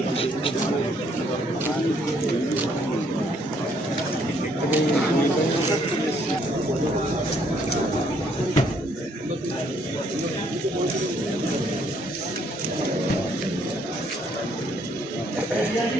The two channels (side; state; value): both; normal; correlation 0.68